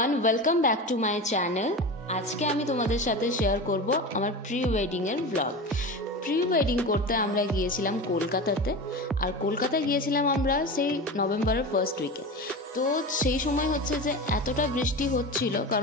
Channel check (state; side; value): normal; both; correlation 0.27